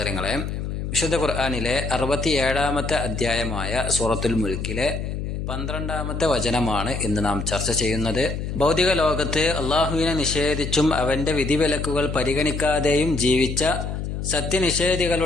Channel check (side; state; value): left; noise; hum, 4 dB below the sound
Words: വിശുദ്ധ ഖുർആനിലെ 67-ാമത്തെ അധ്യായമായ സൂറത്തുൽ മുൽക്കിലെ 12-ാമത്തെ വചനമാണ് ഇന്ന് നാം ചർച്ച ചെയ്യുന്നത്. ഭൗതിക ലോകത്ത് അള്ളാഹുവിനെ നിഷേധിച്ചും അവന്റെ വിധിവിലക്കുകൾ പരിഗണിക്കാതെയും ജീവിച്ച